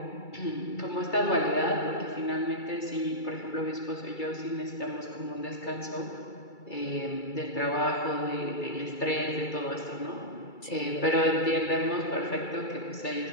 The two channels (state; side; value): late; right; 2.3 ms